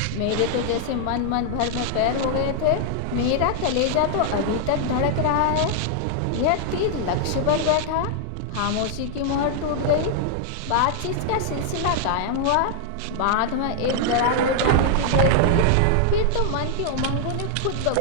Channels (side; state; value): both; different; correlation 0.00